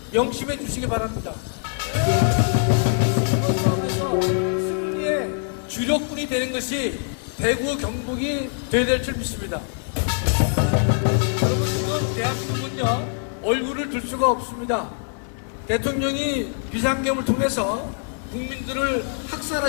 명심해 주시기 바랍니다. 그래서 승리의 주력군이 되는 것이 대구 경북이 되어야 될 줄 믿습니다. 여러분, 대한민국은요 얼굴을 둘 수가 없습니다. 대통령이 비상계엄을 통해서 국민들을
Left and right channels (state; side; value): silent; right; digital silence